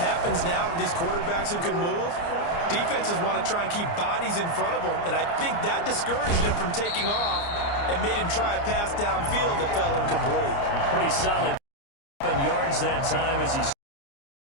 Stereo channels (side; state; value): right; late; 29 ms